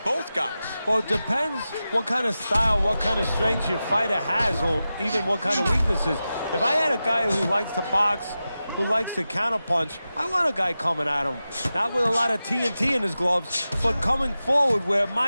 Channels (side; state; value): both; inverted; correlation -0.93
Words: both guys. Well, it depends what kind of style, what kind of strength your fighter has, or even what kind of weaknesses. If I had a guy who likes to box, who likes to counterpunch, I want a guy coming at him, not with a lot of TNT in his gloves, but coming forward where